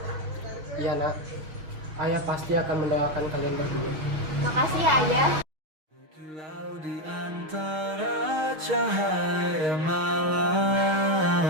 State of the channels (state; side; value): late; left; 6.4 ms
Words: Iya, nak. Ayah pasti akan mendoakan kalian berdua. Makasih ya ayah. Lalu di antara cahaya malam